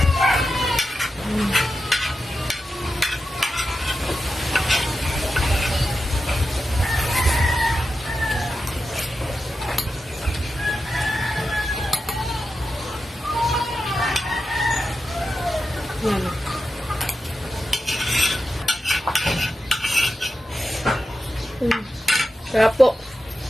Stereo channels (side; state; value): both; normal; correlation 0.90